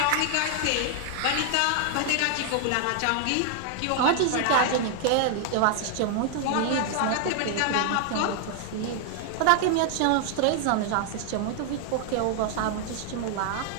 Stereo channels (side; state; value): both; different; correlation 0.00